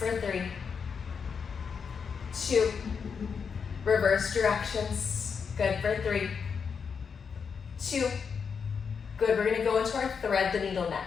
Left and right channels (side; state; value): right; quieter; 6.2 dB